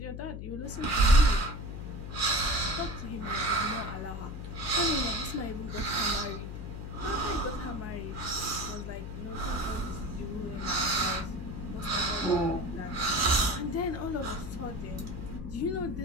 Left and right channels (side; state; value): left; noise; hum, 7 dB below the sound